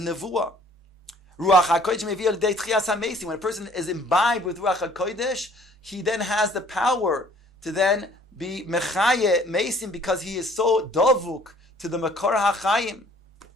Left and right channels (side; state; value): both; normal; correlation 0.56